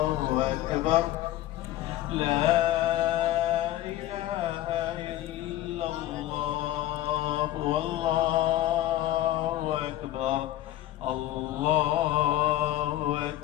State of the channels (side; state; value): right; quieter; 14.0 dB